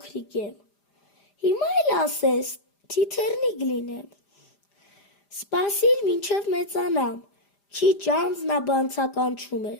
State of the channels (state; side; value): late; right; 5.0 ms